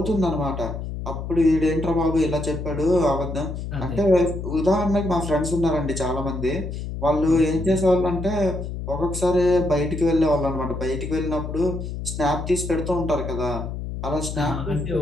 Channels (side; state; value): left; noise; hum, 6 dB below the sound